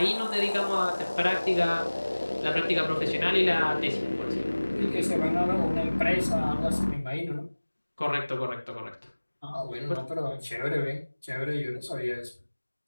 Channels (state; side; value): inverted; both; correlation -1.00